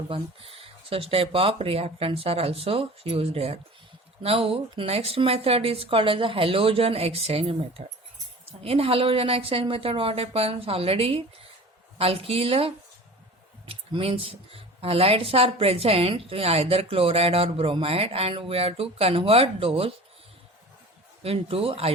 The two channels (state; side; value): normal; both; correlation 0.39